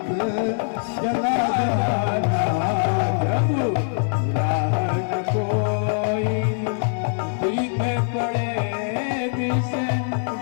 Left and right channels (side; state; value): right; silent; 60 dB below the other